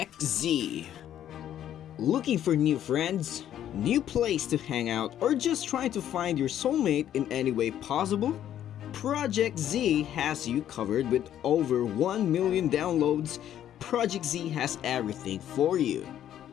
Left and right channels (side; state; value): right; quieter; 11.0 dB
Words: Z. Looking for new friends, new place to hang out, or just trying to find your soulmate in any way possible? Project Z has you covered. With over 1 million downloads. Project Z has everything for you.